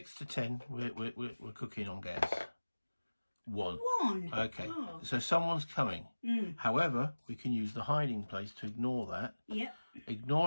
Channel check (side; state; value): both; inverted; correlation -1.00